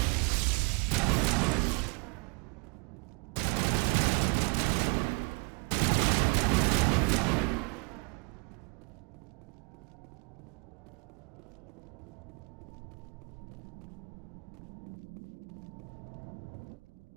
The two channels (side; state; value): left; quieter; 34.7 dB